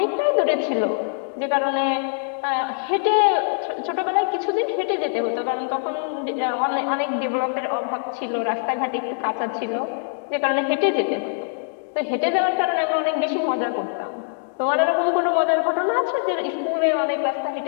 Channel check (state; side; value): silent; right; digital silence